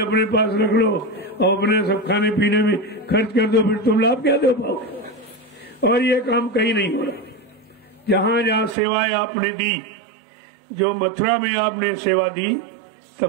पास रख लो और अपने सब खाने पीने में खर्च कर दो, फिर तुम लाभ क्या दे पाओगे। और ये काम कहीं नहीं हो रहा। जहां जहां सेवाएं आपने दी, जो मथुरा में आपने सेवा दी,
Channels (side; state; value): left; drops out; at 8.8 s